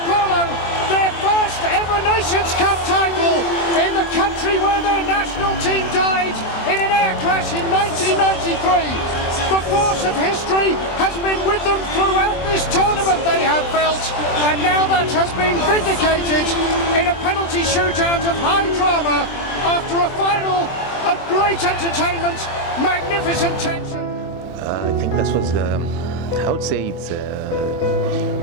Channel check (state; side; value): late; right; 23 ms